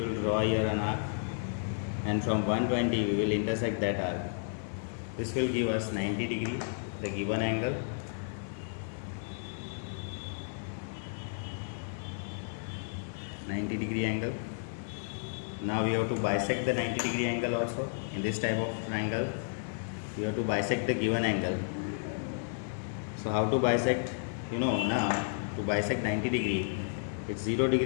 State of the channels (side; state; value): right; silent; digital silence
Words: draw here an arc, and from 120 we will intersect that arc. This will give us 90 degree, the given angle. -90-degree angle. Now we have to bisect the 90-degree angle also. In this type of triangle, we have to bisect the given angle. So how to bisect? You know, now to bisect 90 degree, its